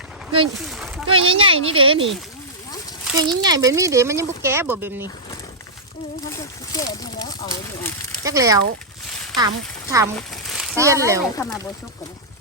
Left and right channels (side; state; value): both; normal; correlation -0.11